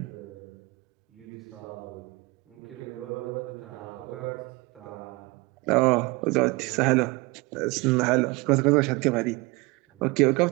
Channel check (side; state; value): left; quieter; 25.0 dB